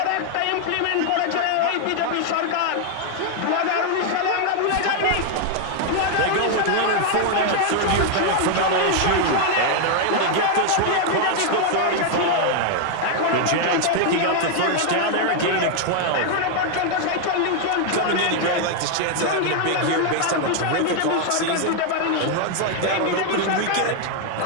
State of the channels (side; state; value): both; different; correlation 0.00